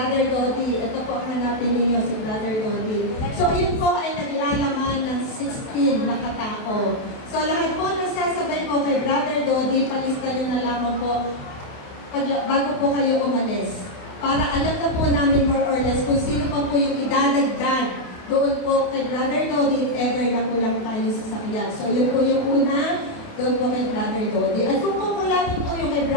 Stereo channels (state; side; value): late; right; 28 ms